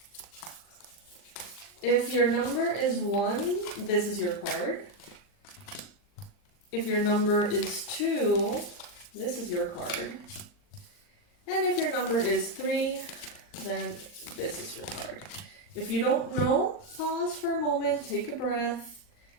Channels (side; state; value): right; late; 39 ms